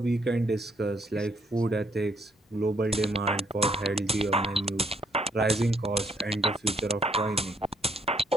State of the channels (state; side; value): normal; both; correlation 0.71